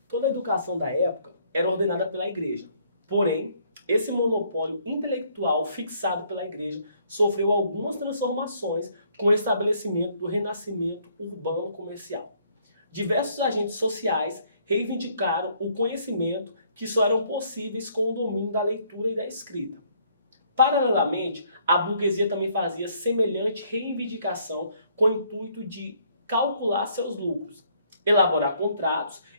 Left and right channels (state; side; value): inverted; both; correlation -0.66